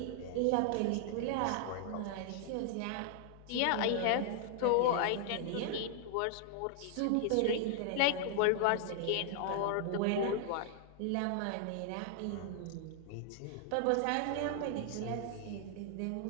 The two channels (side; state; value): both; different; correlation 0.00